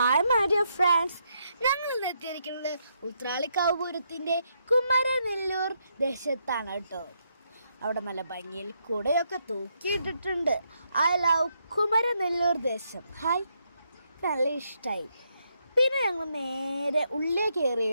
my dear friends, ഞങ്ങൾ ഇന്ന് എത്തിയിരിക്കുന്നത് ഉത്രാളിക്കാവ് പൂരത്തിൻ്റെ കുമരനെല്ലൂർ ദേശത്താണ് കേട്ടോ. അവിടെ നല്ല ഭംഗിയിൽ കുടയൊക്കെ തൂക്കിയിട്ടിട്ടുണ്ട്. ഐ ലവ് കുമരനെല്ലൂർ ദേശം. ഹായ്, നല്ല ഇഷ്ടമായി. പിന്നെ ഞങ്ങൾ നേരെ ഉള്ളിൽ കയറി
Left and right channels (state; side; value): inverted; both; correlation -0.78